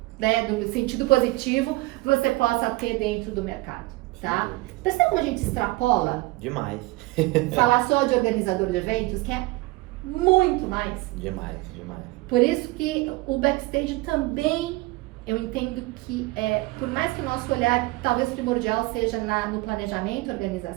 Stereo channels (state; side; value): quieter; left; 21.5 dB